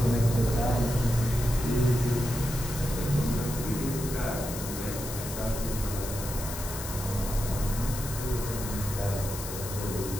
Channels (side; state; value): left; noise; hiss, 8 dB below the sound